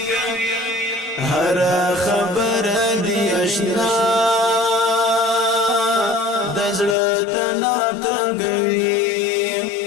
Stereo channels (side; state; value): right; drops out; at 7.0 s